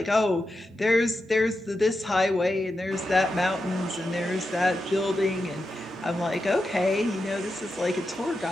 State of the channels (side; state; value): both; normal; correlation 0.89